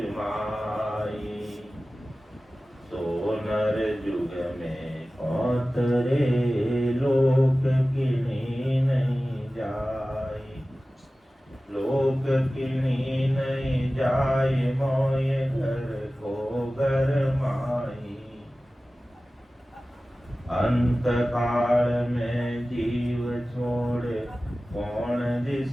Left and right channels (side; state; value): both; normal; correlation 0.96